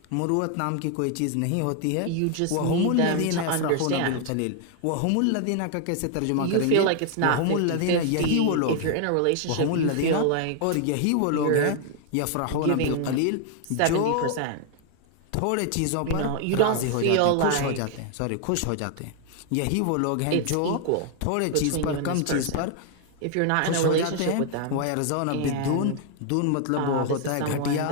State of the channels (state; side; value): different; both; correlation 0.00